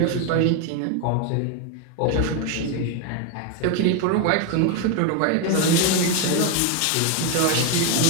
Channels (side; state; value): both; different; correlation 0.02